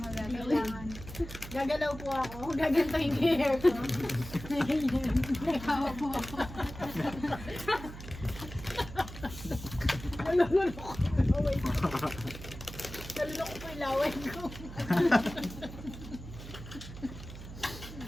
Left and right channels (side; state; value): right; noise; hum, 12 dB below the sound